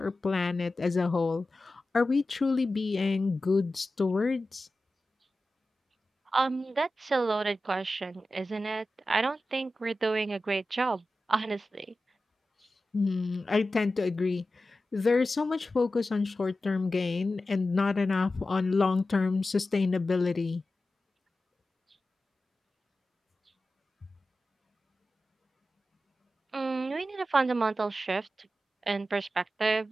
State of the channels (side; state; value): both; normal; correlation 0.93